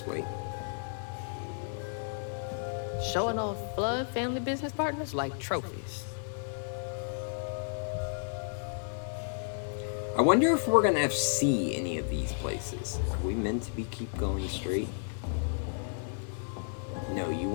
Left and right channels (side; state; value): right; silent; 56 dB below the other